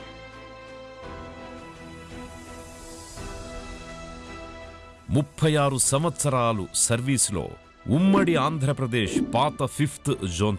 36 సంవత్సరాలు సర్వీసులో ఉమ్మడి ఆంధ్రప్రదేశ్ పాత 5th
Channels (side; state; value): both; identical; correlation 1.00